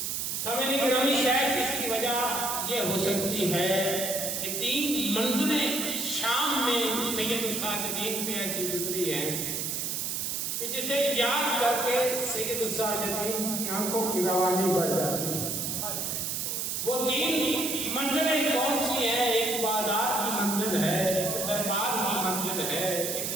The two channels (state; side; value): noise; right; hiss, 2 dB below the sound